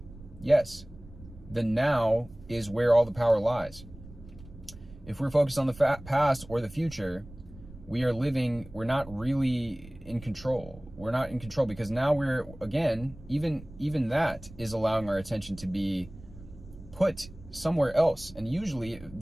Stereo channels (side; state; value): right; noise; rumble, 18 dB below the sound